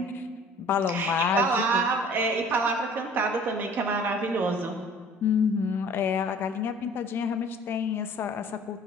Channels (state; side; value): normal; both; correlation 0.49